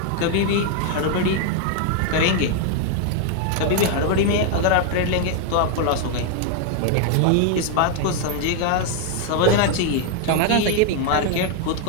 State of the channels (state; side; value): different; both; correlation 0.00